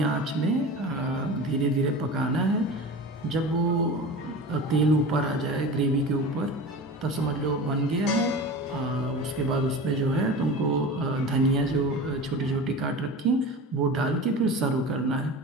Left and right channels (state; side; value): normal; both; correlation 0.33